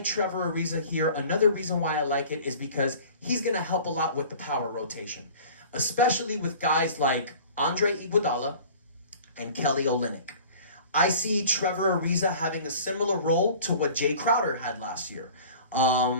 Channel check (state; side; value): inverted; both; correlation -0.44